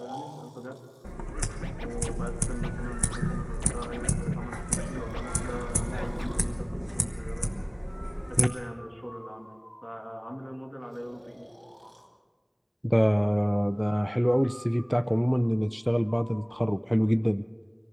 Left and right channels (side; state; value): both; identical; correlation 1.00